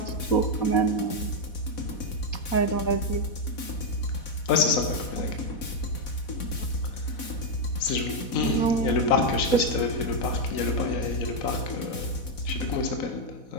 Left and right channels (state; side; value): late; right; 4.1 ms